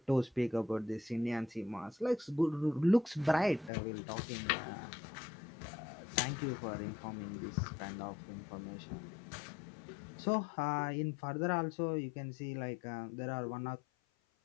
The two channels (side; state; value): right; drops out; at 3.7 s